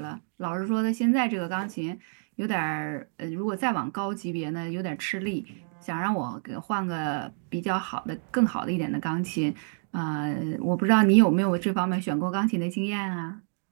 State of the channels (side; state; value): left; silent; digital silence